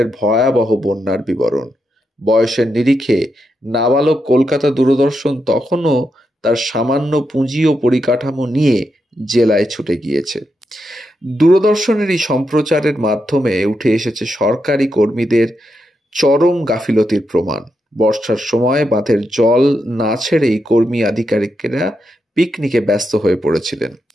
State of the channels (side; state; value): both; normal; correlation 0.84